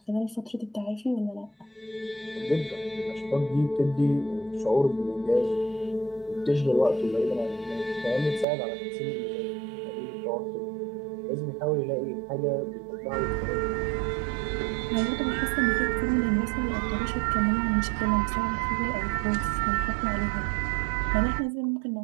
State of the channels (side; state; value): left; drops out; at 8.5 s